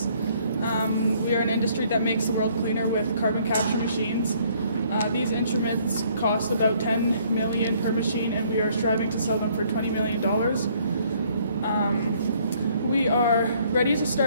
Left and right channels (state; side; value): inverted; both; correlation -0.63